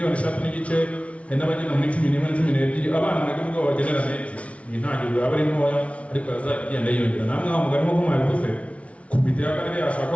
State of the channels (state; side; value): late; right; 0.063 ms